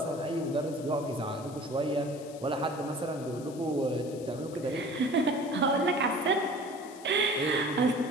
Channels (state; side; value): noise; left; hiss, 20 dB below the sound